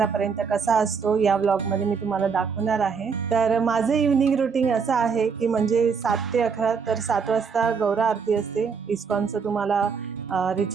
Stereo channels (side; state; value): left; quieter; 5.8 dB